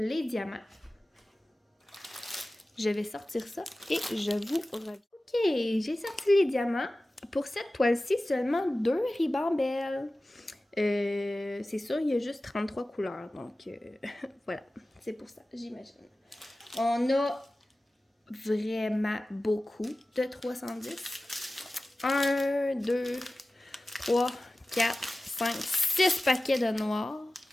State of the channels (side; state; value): both; normal; correlation 0.96